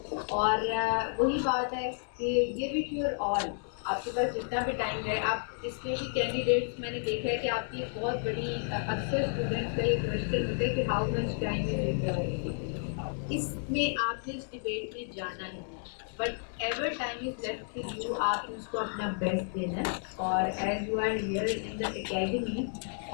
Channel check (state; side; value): silent; right; 57 dB below the other